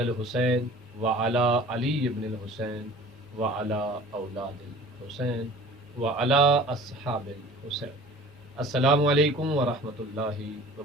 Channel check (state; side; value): normal; both; correlation 0.45